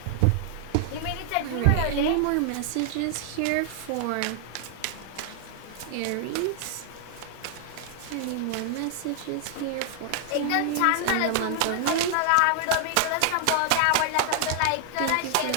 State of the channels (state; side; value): different; both; correlation 0.00